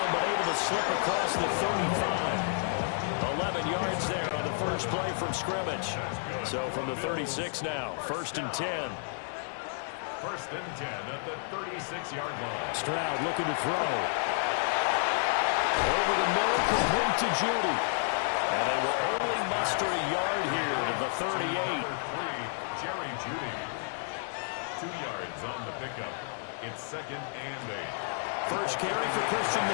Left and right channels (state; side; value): silent; right; digital silence